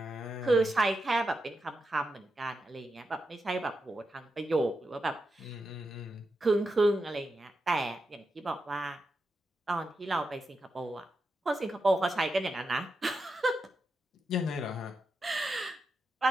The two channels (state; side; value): normal; both; correlation 0.87